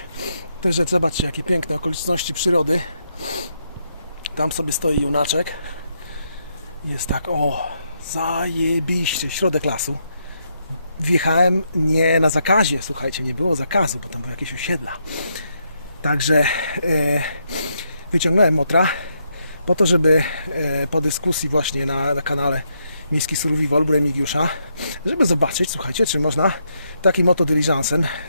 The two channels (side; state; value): both; inverted; correlation -0.79